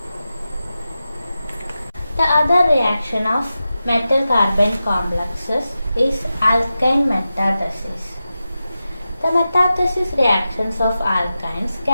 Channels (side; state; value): both; inverted; correlation -0.93